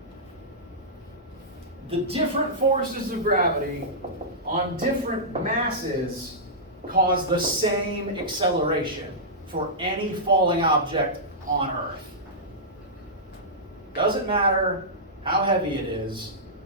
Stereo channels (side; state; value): both; normal; correlation -0.14